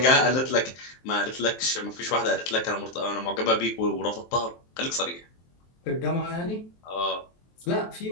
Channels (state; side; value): late; right; 23 ms